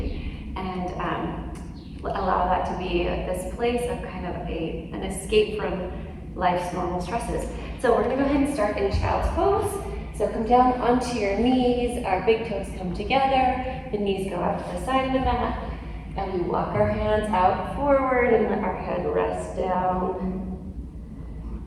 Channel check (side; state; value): both; identical; correlation 1.00